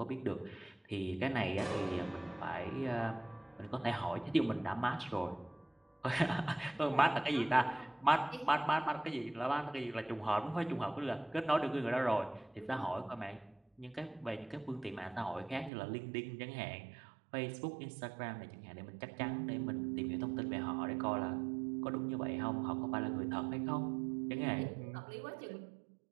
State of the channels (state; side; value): drops out; left; at 15.7 s